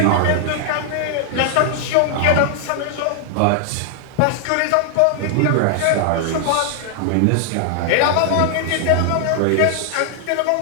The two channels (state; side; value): different; both; correlation 0.00